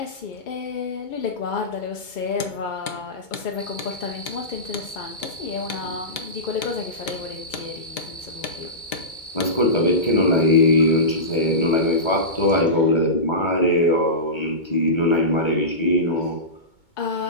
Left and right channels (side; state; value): right; late; 2.2 ms